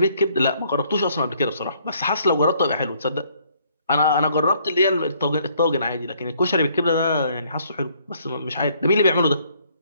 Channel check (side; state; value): both; inverted; correlation -0.65